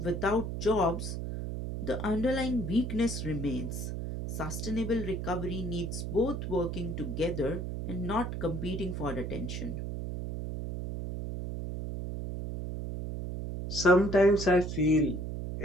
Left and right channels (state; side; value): noise; right; hum, 4 dB below the sound